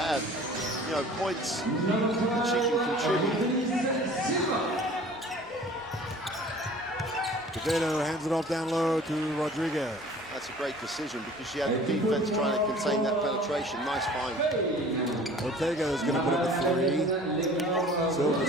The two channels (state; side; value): normal; both; correlation 0.47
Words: you know, points that she can contribute. Quevedo hands it off down low to Rodriguez. That's a great decision because she had the defense trying to contain that penetration. Nice find. Ortega is going to put up a three.